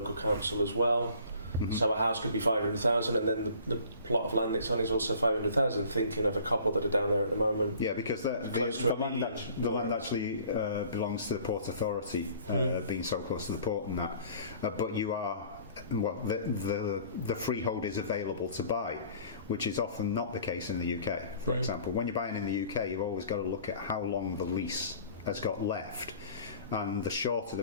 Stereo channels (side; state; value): both; inverted; correlation -0.51